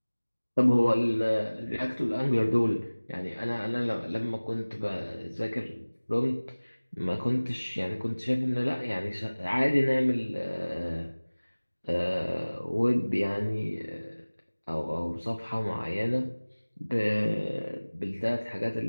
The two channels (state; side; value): inverted; both; correlation -1.00